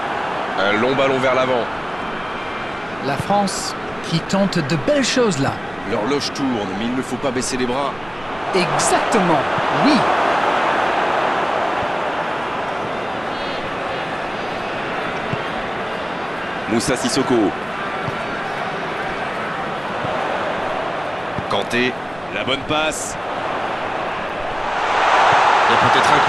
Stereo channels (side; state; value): right; noise; rumble, 22 dB below the sound